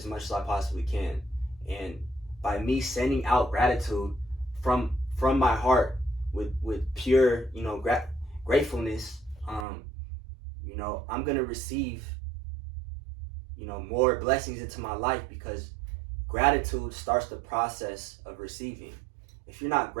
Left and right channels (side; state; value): left; drops out; at 9.7 s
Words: much as I possibly can. And by me sending out gratitude from my heart with pure, you know, gratefulness, you know, I'm going to receive, you know, more blessings into my life, because gratitude starts the process of receiving. If you're not